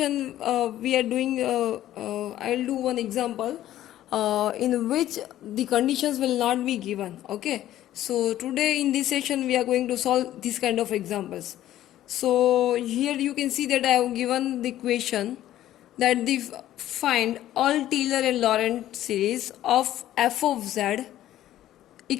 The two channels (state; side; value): quieter; right; 13.2 dB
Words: we are doing. I'll do one example in which the conditions will not be given. Okay, so today in this session we are going to solve this kind of examples. So here you can see that I have given the equation that the find all Taylor and Lorentz series of f of z